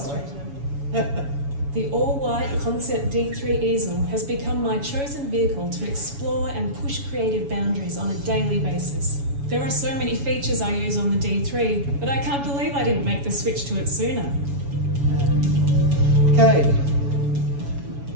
way. illustrator. The all-white Concept D3 easel has become my chosen vehicle to explore and push creative boundaries on a daily basis. There are so many features I use on the D3, but I can't believe I didn't make the switch to it sooner. Okay,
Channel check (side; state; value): left; late; 7.1 ms